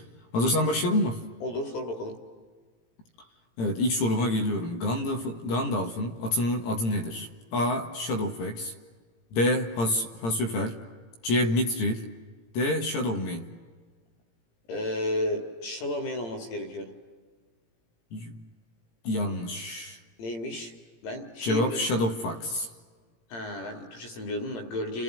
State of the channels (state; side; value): late; right; 17 ms